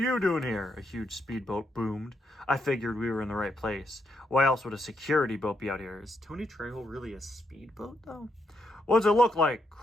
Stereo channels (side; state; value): both; normal; correlation 0.79